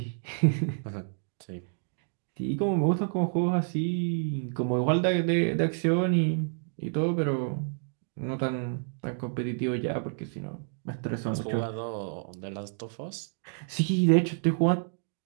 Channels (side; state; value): left; silent; digital silence